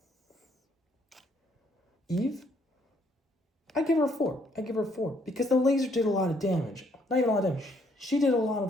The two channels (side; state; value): both; normal; correlation 0.68